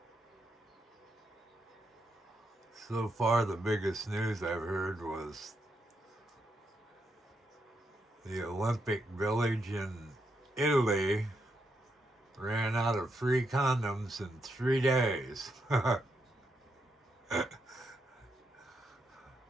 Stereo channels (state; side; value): normal; both; correlation 0.81